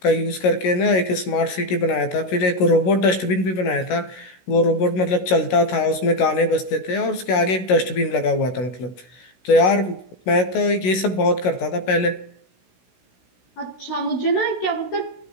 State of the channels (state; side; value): late; right; 16 ms